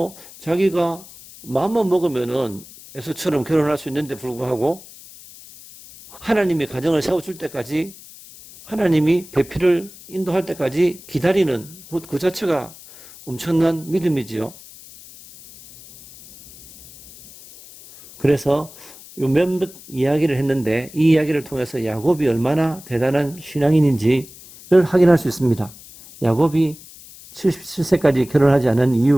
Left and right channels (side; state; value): left; noise; hiss, 19 dB below the sound